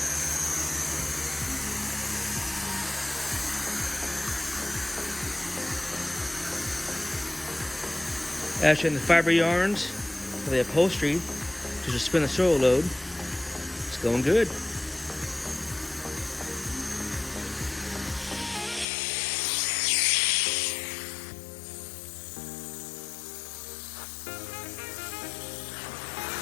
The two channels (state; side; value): drops out; right; at 18.9 s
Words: Actually, in the fiber yarns for the upholstery to just spin the soil load. It's going good.